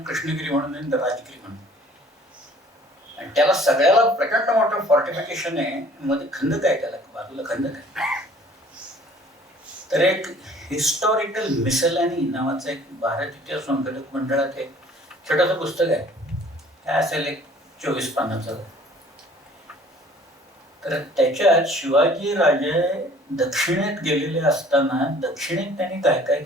कृष्णगिरी म्हणून आहे, राजगिरी म्हणून. आणि त्याला सगळ्याला प्रचंड मोठं फॉर्टिफिकेशन आहे, मध्ये खंदक आहे, त्याला बाजूला खंदक आहे. तर एक हिस्टॉरिकल मिसलॅनी नावाचं एक भारत इतिहास संशोधक मंडळात एक छोटंसं पुस्तक आहे, काय असेल एक 24 पानाचं. तर त्याच्यात शिवाजी राजे दक्षिणेत गेलेले असताना दक्षिणेत त्यांनी काय काय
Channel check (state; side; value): normal; both; correlation 0.53